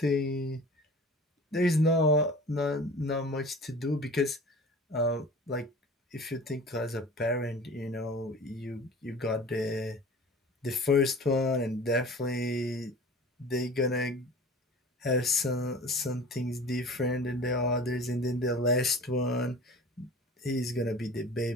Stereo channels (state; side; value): normal; both; correlation 0.41